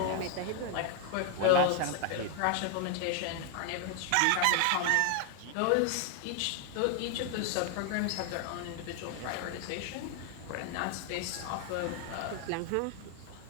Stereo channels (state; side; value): different; both; correlation 0.00